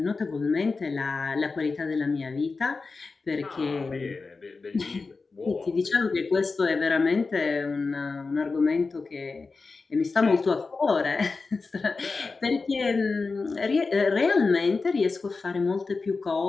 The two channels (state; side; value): quieter; right; 4.2 dB